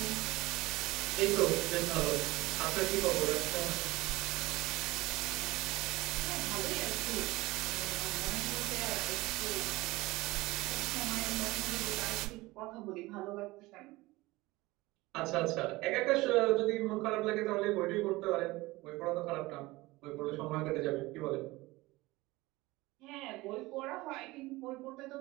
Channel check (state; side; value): quieter; left; 20.4 dB